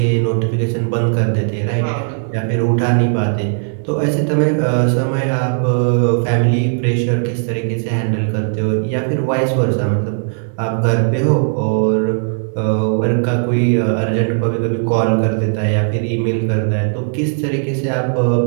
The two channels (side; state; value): left; silent; 64 dB below the other